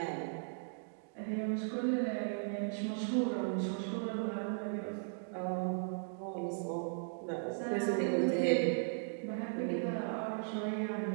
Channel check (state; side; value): silent; left; digital silence